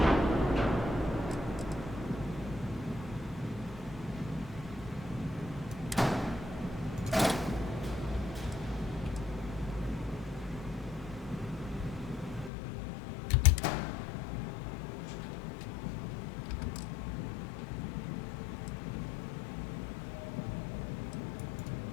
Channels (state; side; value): drops out; right; at 12.5 s